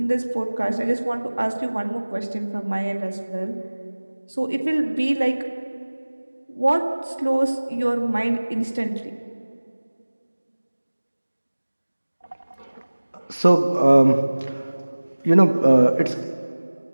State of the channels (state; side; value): inverted; both; correlation -1.00